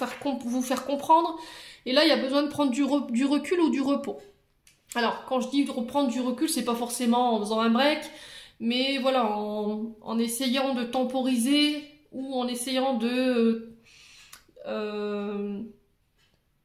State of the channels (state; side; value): identical; both; correlation 1.00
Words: faire comprendre. Et là, il y a besoin de prendre du recul ou du repos. Alors, quand je dis de reprendre du recul, c'est pas forcément en faisant un break, mais voilà, en essayant de temporiser ou en essayant de